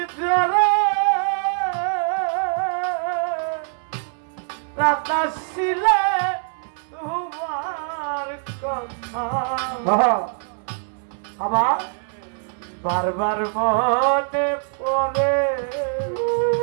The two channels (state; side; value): silent; left; 63 dB below the other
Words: ধরে রাতা ছিলে তোমার কথা আবার বারবার মনে পড়ে